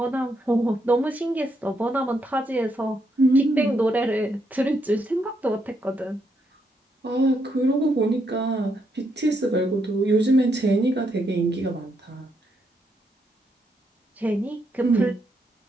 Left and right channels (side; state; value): both; normal; correlation 0.78